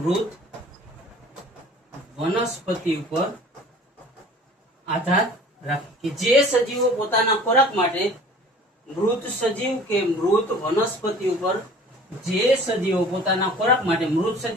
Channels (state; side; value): normal; both; correlation 0.46